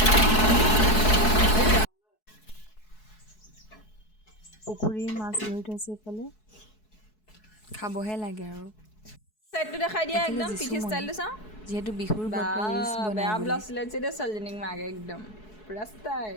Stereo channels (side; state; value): right; late; 4.7 ms